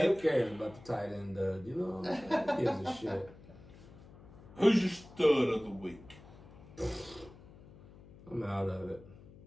who cares about the tight end dud? You know what I'm saying? Who gives a shit? Who's your stud of the week? I'm out of it.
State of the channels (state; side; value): noise; left; hum, 20 dB below the sound